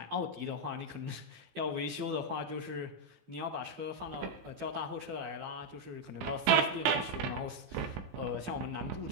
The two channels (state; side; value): late; left; 15 ms